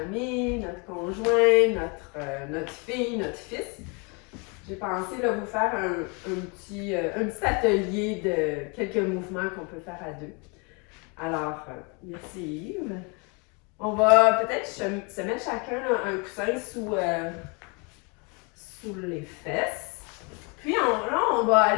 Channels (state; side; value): quieter; right; 32.3 dB